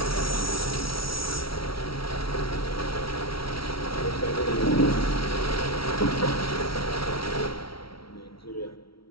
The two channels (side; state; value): right; late; 0.75 ms